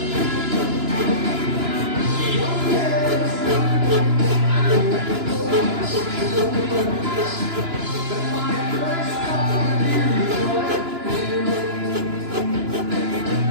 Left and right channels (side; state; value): left; late; 2.9 ms